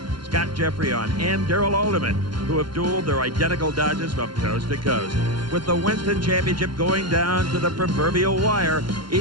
Scott Jeffreyon and Darrell Alderman, who have dueled their identical Dodges from coast to coast. With the Winston Championship going down to the proverbial wire,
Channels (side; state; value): left; late; 0.72 ms